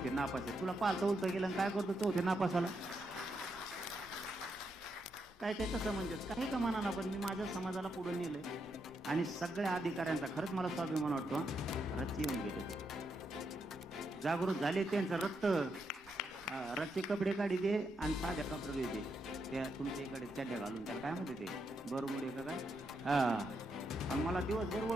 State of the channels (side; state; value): both; normal; correlation 0.81